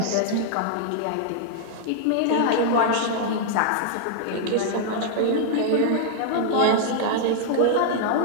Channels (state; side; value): different; both; correlation -0.01